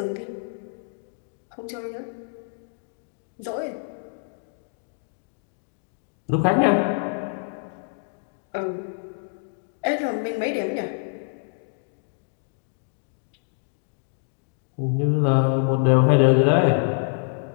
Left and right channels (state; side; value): silent; right; 61 dB below the other